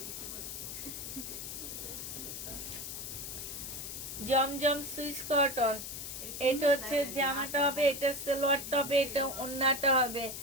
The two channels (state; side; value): noise; left; hiss, 7 dB below the sound